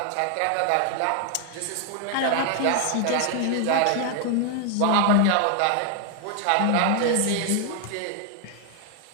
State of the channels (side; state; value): both; different; correlation 0.00